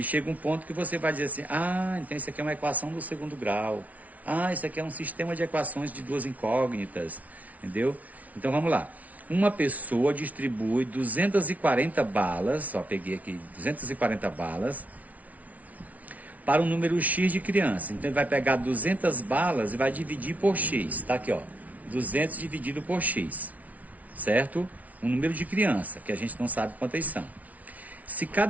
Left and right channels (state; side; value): late; left; 0.071 ms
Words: chega um ponto que você vai dizer assim, então isso aqui é uma equação do segundo grau. Isso aqui é um sistema de equações de duas incógnitas, entendeu? Então, vamos lá. Uma pessoa distribui 240 balas, só peguei aqui 240 balas, para um número X de crianças. Então, ele vai pegar 200 balas e vai dividir por X. Tá aqui, ó. 200 dividido por X, certo? Um número de criança, que a gente não sabe quantas são. Se